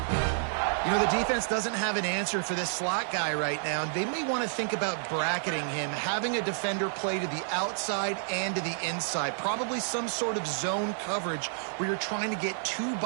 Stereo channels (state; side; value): silent; left; 58 dB below the other